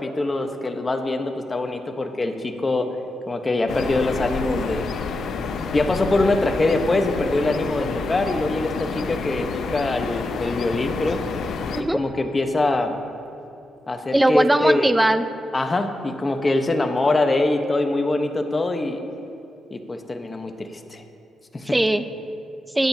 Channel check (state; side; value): normal; both; correlation 0.90